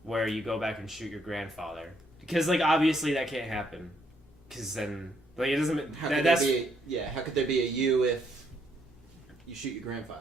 where you go back and shoot your grandfather. Because, obviously that can't happen. Because then, it doesn't... How could there be a you if you shoot your grandfather?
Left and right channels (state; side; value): normal; both; correlation 0.72